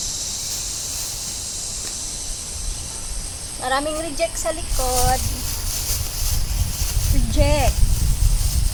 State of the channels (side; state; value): both; identical; correlation 1.00